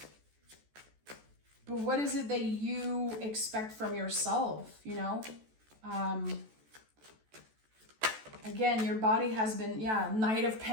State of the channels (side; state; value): left; late; 14 ms